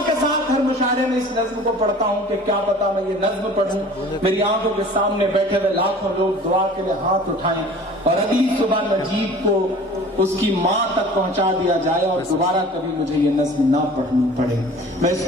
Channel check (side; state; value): both; normal; correlation 0.45